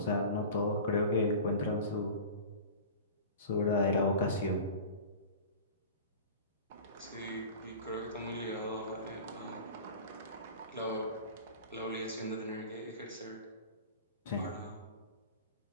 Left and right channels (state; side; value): inverted; both; correlation -0.36